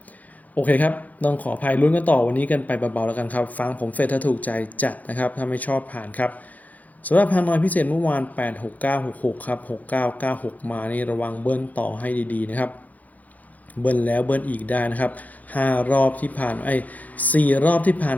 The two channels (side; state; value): right; late; 0.078 ms